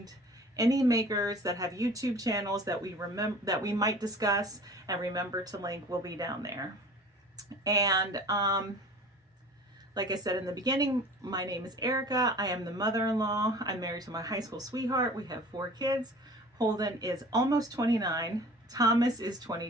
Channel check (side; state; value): both; normal; correlation 0.43